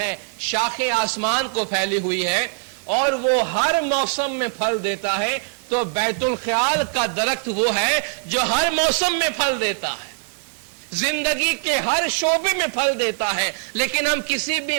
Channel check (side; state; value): left; silent; 64 dB below the other